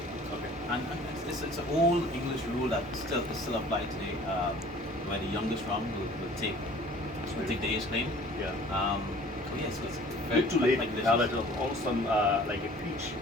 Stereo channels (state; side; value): normal; both; correlation 0.49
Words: Okay. And it's an old English rule that still applies today, where the youngest rum will take the age claim. Yeah. So yes, it's very Good to late delicious. palate of awesome, like a peach